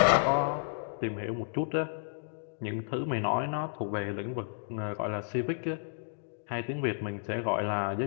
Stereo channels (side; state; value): right; silent; digital silence